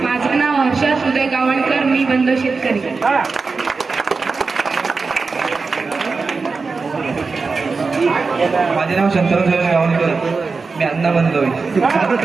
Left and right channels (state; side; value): quieter; left; 4.4 dB